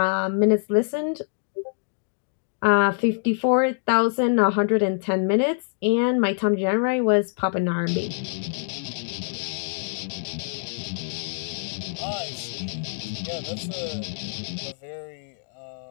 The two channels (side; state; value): right; silent; digital silence